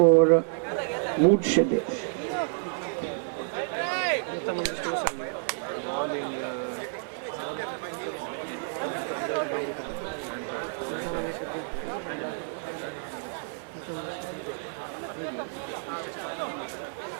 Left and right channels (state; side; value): silent; left; 58 dB below the other